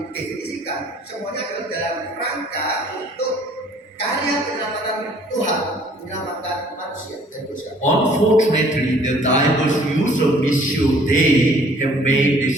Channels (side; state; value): both; normal; correlation 0.56